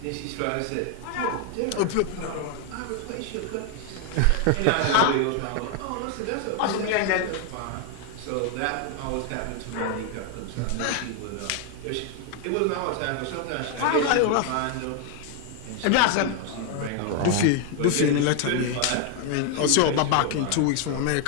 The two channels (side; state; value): both; different; correlation 0.01